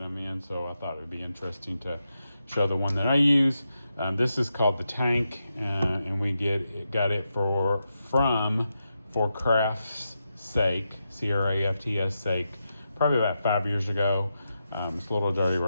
I'm in, so I thought it would be interesting to show the one that I use. This is called the Tank, and we got it from For Craft's Sake, C-R-A-F-T-S sake, probably about 5 years ago. It's a little dirty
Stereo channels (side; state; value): both; inverted; correlation -0.87